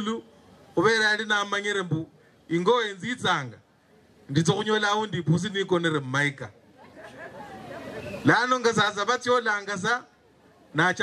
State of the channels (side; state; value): both; identical; correlation 1.00